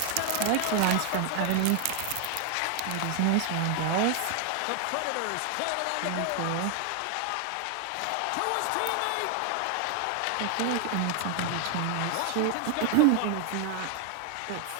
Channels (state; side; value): different; both; correlation 0.00